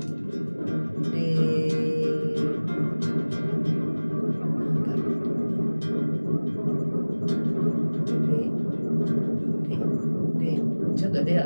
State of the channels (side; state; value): both; inverted; correlation -1.00